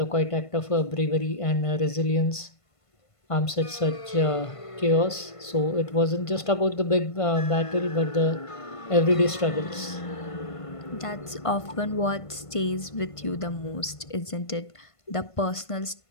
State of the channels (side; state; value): right; late; 1.5 ms